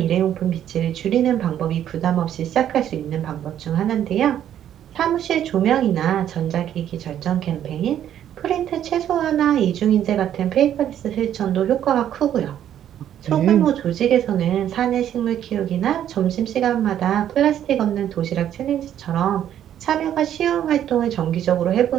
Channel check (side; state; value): left; quieter; 10.6 dB